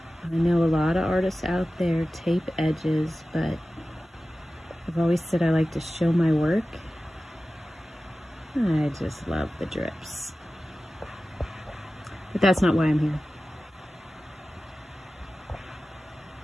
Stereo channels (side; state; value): both; normal; correlation 0.95